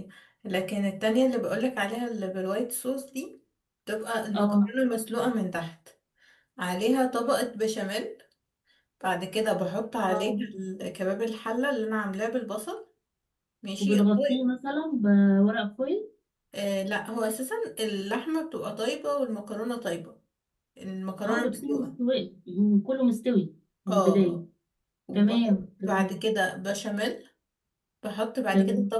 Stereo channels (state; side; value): identical; both; correlation 1.00